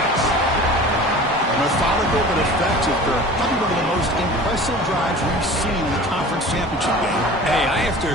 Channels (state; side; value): normal; both; correlation 0.40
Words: And a methodical but effective for probably one of the most impressive drives we've seen in the conference championship game. Hey, I have to